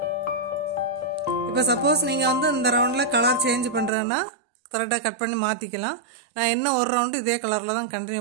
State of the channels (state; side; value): drops out; left; at 3.9 s